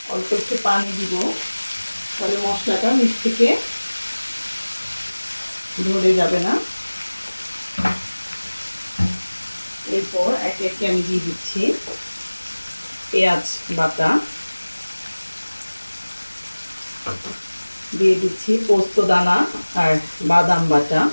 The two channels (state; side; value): inverted; both; correlation -1.00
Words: অল্প একটু পানি দিব, তাহলে মশলাটা নিচ থেকে ধরে যাবে না। এরপর একে একে আমি দিয়ে দিচ্ছি পেঁয়াজ বাটা, দিয়ে দিচ্ছি পোস্ত দানা আর বাদাম বাটা।